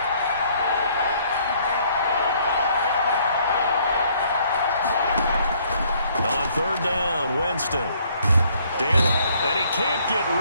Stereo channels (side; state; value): both; inverted; correlation -0.64